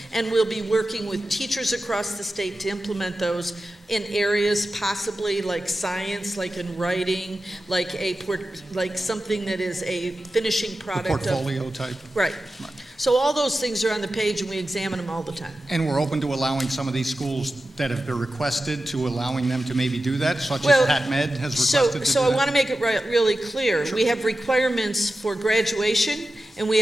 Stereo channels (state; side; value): normal; both; correlation 0.93